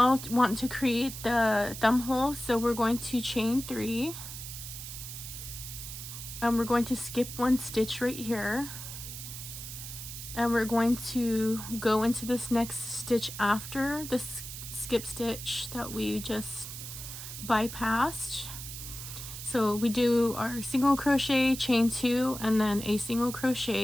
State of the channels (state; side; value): noise; right; hiss, 9 dB below the sound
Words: want to create the thumb hole, so we're going to chain 3 and we're going to skip 1 stitch right here, and we're going to go into this next stitch after this skip stitch that we just bypassed. So we do our single crochet, chain 2, and then a single